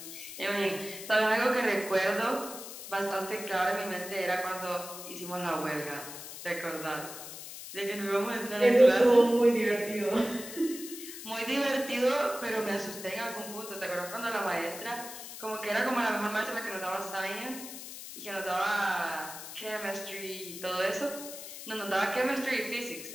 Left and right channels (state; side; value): noise; left; hiss, 11 dB below the sound